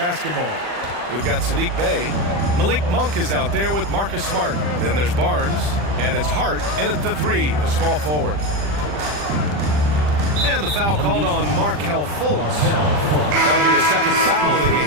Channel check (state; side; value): late; left; 40 ms